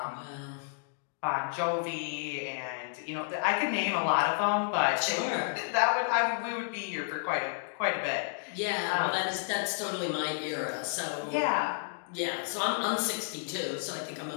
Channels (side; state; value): right; silent; digital silence